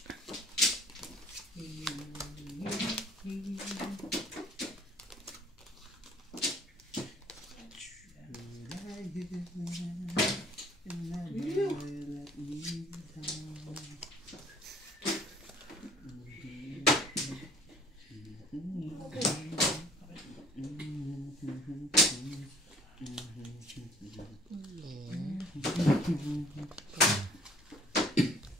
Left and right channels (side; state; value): both; normal; correlation 0.54